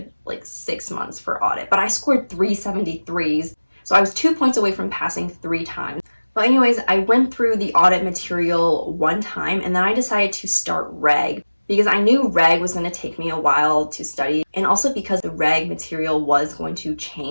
like 6 months for audit, but I scored 373s. So I was 2 points away from passing 3 times. But anyways, I went through the audit material one time and then I decided to start reg because I knew reg was going to take me a while to study, and also because the reg material was going to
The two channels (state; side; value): inverted; both; correlation -1.00